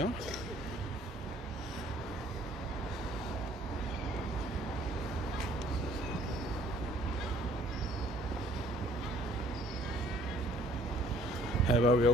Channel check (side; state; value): both; normal; correlation 0.58